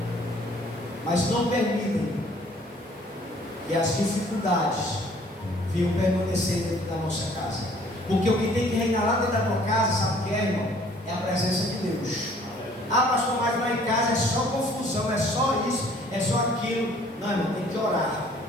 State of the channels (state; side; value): normal; both; correlation 0.57